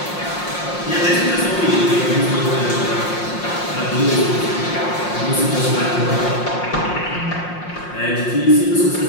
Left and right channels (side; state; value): right; late; 5.6 ms